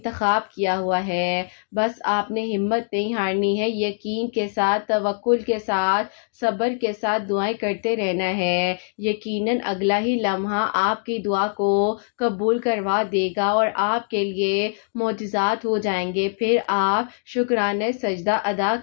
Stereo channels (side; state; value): right; silent; digital silence